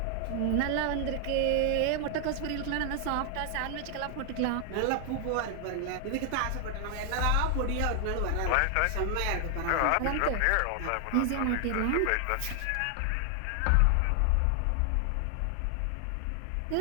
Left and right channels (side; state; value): both; different; correlation 0.00